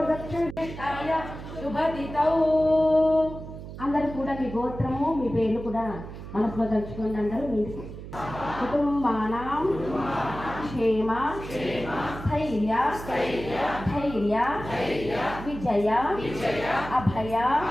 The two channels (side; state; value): right; noise; hum, 11 dB below the sound